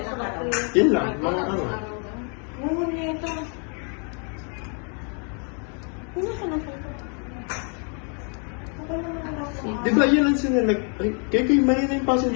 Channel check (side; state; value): right; quieter; 39.9 dB